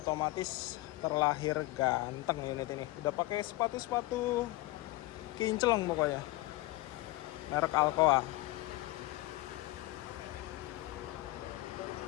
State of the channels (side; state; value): right; quieter; 19.2 dB